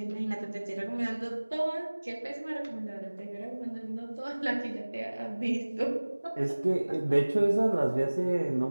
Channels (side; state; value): both; inverted; correlation -1.00